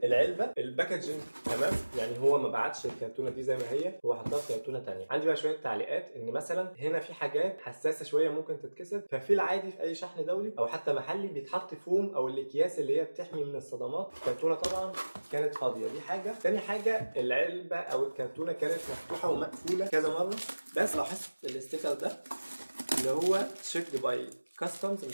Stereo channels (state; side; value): inverted; both; correlation -1.00